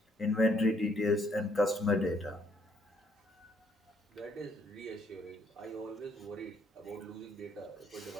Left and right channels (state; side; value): normal; both; correlation 0.69